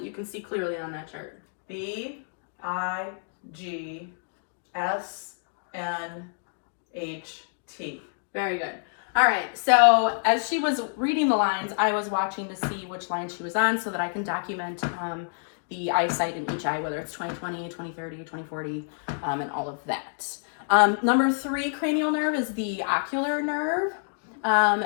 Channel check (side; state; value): right; silent; digital silence